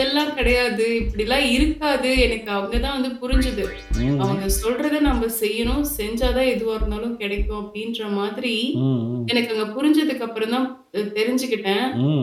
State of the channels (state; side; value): identical; both; correlation 1.00